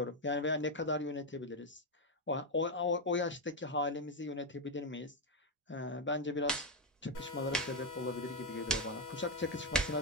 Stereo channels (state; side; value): normal; both; correlation 0.04